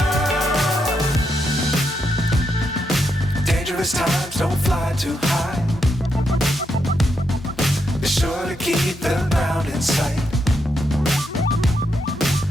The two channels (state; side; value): normal; both; correlation 0.81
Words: Times don't fly too high. Be sure to keep the ground in sight.